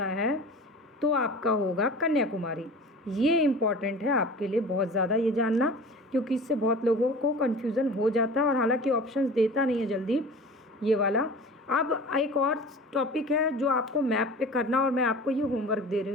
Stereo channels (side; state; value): both; normal; correlation 0.38